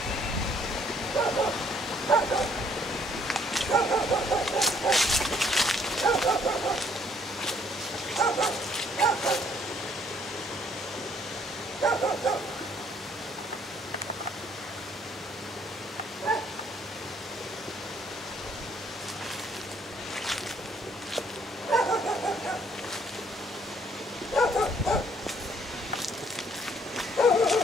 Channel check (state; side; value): normal; both; correlation 0.65